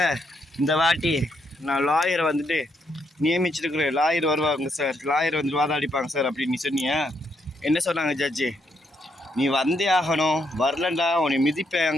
இந்த வாட்டி நான் லாயரை வந்துட்டு நியமிச்சிருக்கிறேன். லாயர் வருவாங்க சார், லாயர் வந்து வாதாடிப்பாங்க சார் அப்படின்னு நீ சொன்னியா? என்ன சொன்னாங்க ஜட்ஜி? நீ வந்தே ஆகணும், வரலண்டா உன்னை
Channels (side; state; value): both; normal; correlation 0.76